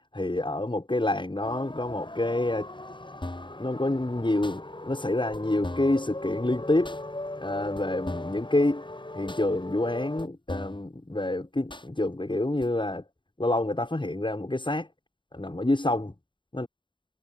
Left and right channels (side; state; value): right; late; 0.23 ms